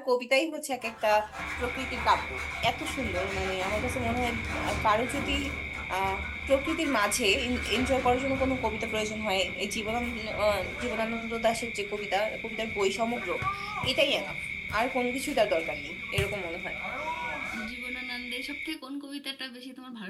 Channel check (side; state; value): both; identical; correlation 1.00